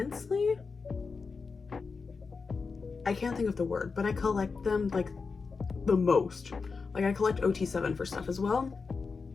I can't think of the word, but I collect them like the most. Like, I collect OT7 for stuff as well.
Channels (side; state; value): right; quieter; 4.8 dB